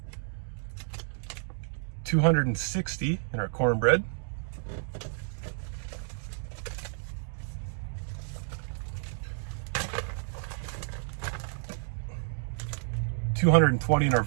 260 in our cornbread, 220 in our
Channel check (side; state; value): left; silent; digital silence